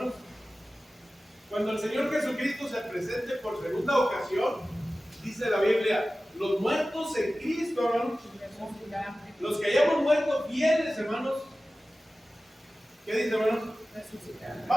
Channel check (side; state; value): both; normal; correlation 0.96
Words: cuando el Señor Jesucristo se presente por segunda ocasión, dice la Biblia, los muertos en Cristo, hermanos, los que hayamos muerto fieles, hermanos, ¿qué dice, hermanos?